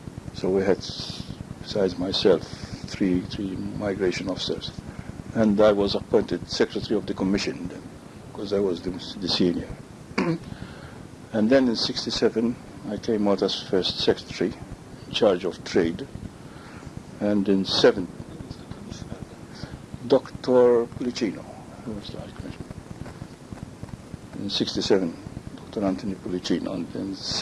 So we had, besides myself, three migration officers. And I was appointed Secretary of the Commission then, because I was the senior. And then in 67, I came out as first Secretary, in charge of trade. And in 7, Dr. Pulicino, who was the High Commissioner. In 67, Dr. Anthony Pulicino. And in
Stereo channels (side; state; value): both; identical; correlation 1.00